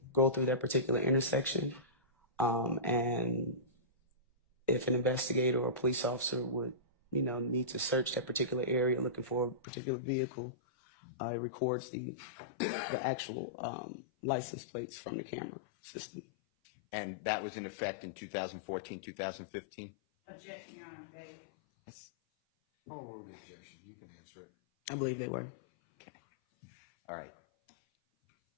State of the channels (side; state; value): right; drops out; at 9.6 s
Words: go through that particular intersection. And if an investigator or a police officer would, need to search that particular area looking for a particular vehicle, it records the actual license plates from the camera system. And that was in effect in 2014, 2015? Objection, Your Honor, they. I'll rule the objection. You can answer it. I believe they were. Okay. All right.